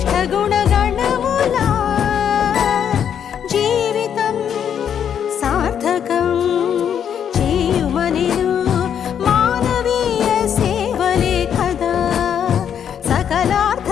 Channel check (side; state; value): right; quieter; 8.6 dB